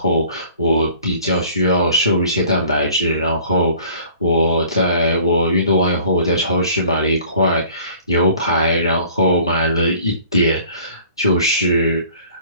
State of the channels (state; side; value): inverted; both; correlation -0.52